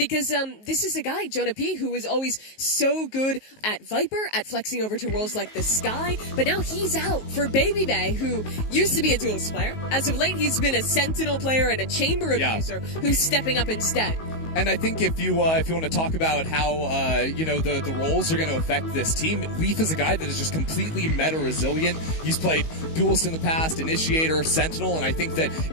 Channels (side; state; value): right; late; 19 ms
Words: this is a guy, Jonah P, who was always so good at Viper, at flexing over to roles like the Sky, but now he's out for Baby Bay, who used to be a duelist player. As of late, he's been a Sentinel player and a Chamber abuser who's stepping up instead. And I think if you want to talk about how the roles are going to affect this team, Leaf is a guy that is just completely meta resilient. He's played duelist in the past, initiator, sentinel, and I think that